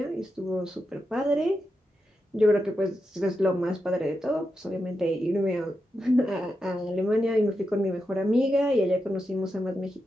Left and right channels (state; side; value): normal; both; correlation 0.87